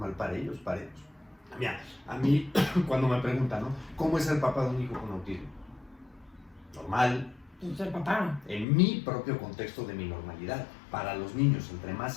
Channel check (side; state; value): right; drops out; at 8.7 s